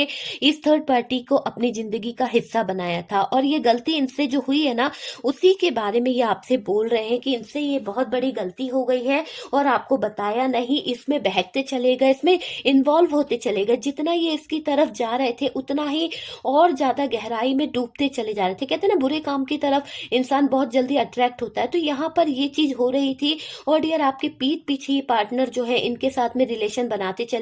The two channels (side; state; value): both; identical; correlation 1.00